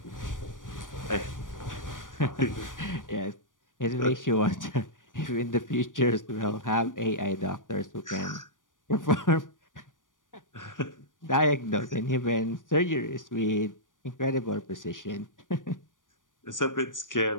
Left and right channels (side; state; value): right; late; 0.88 ms